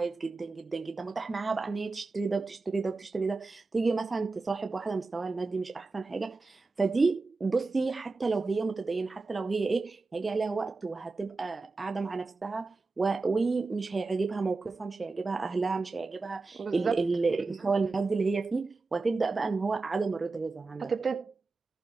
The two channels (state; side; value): quieter; left; 3.8 dB